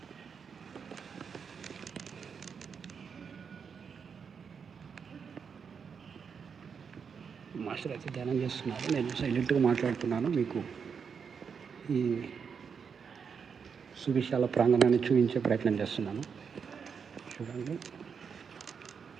మాస్టర్ అయితే ధ్యానం చేస్తున్నారు. నేను సైలెంట్గా మాట్లాడుతున్నాను. మీకు ఈ సువిశాల ప్రాంగణాన్ని చూపించే ప్రయత్నం చేస్తున్నాను. చూడండి,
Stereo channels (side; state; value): left; quieter; 6.4 dB